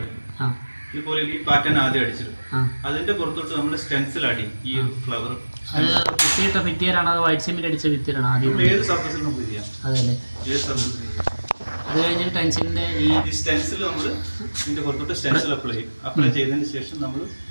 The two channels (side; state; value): both; inverted; correlation -1.00